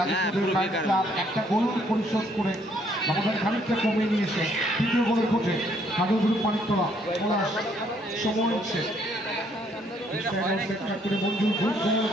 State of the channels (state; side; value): normal; both; correlation 0.67